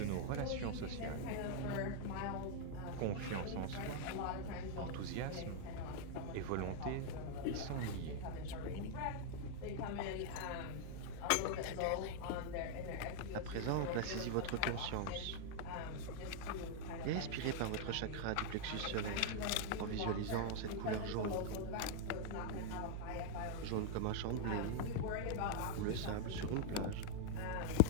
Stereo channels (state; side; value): different; both; correlation 0.00